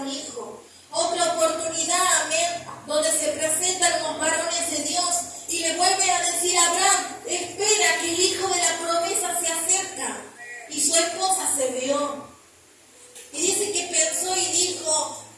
hijo. Otra oportunidad, amén, donde se presentan los varones de Dios y le vuelve a decir a Abraham, espera que el hijo de la promesa se acerca. Y su esposa se rió. Y dice que pensó y dijo,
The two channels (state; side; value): identical; both; correlation 1.00